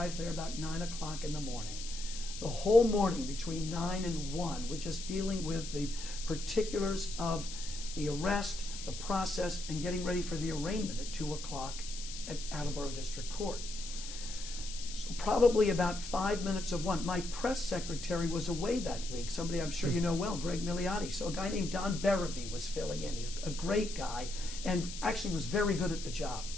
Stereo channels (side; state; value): left; noise; hiss, 10 dB below the sound